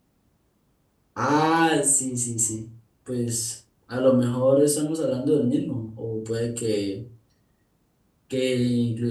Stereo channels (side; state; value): both; identical; correlation 1.00